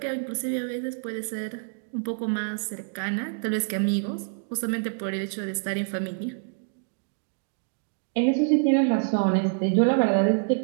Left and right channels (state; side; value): silent; left; digital silence